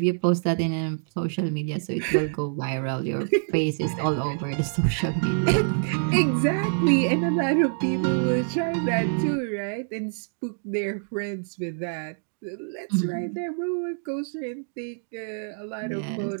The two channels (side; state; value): left; silent; digital silence